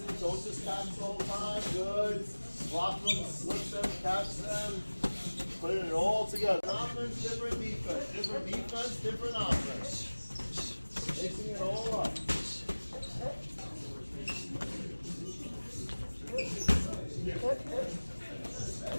Don't just catch the whole time. Good. Block them, slip them, catch them. Putting it all together. Offense, different defense. Different defense, different offense. Mixing it all up.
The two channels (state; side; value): inverted; both; correlation -1.00